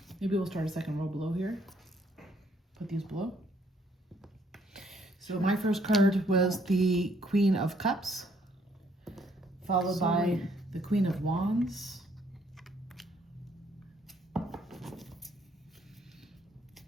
Maybe we'll start a second row below here. Put these below. So my first card was the Queen of Cups, followed by the Queen of Wands.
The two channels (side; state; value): both; normal; correlation 0.67